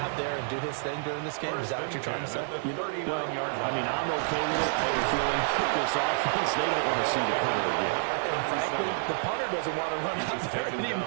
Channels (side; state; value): left; silent; digital silence